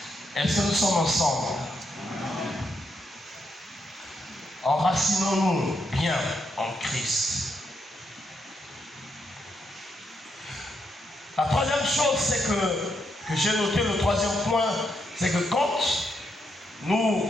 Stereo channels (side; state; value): both; normal; correlation 0.80